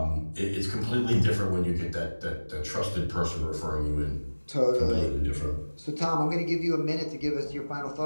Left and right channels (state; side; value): inverted; both; correlation -1.00